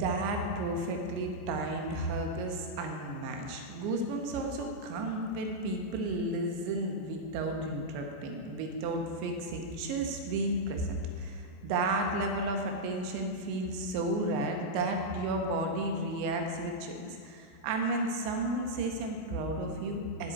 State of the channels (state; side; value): late; left; 15 ms